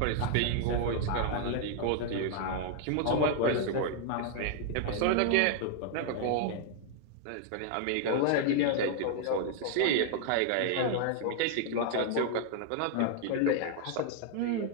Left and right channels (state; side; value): different; both; correlation 0.00